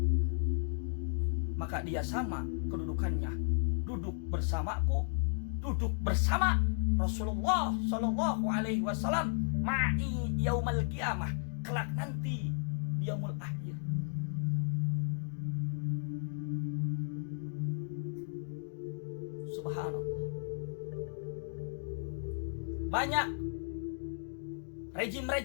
maka dia sama kedudukannya, duduk bersamaku, duduk bersama Rasulullah Shallallahu Alaihi Wasallam ma'i yaumal qiyamah, kelak nanti di yaumul akhir. Subhanallah. Banyak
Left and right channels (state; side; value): silent; right; digital silence